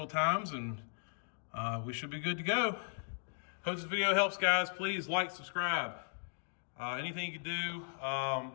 times, and we should be good to go. Hope this video helps, guys. Please like, subscribe. Anything you can do to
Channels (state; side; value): silent; right; digital silence